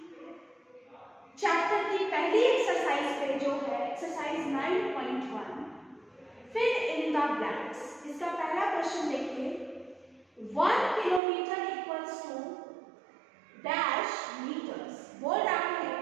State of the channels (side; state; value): left; drops out; at 11.2 s